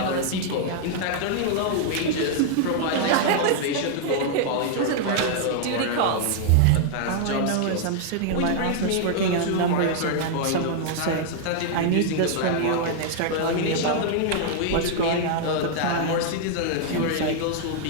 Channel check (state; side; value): different; both; correlation -0.01